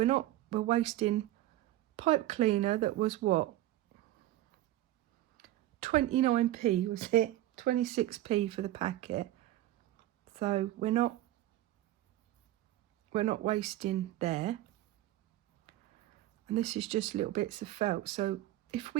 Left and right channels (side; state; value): left; quieter; 15.1 dB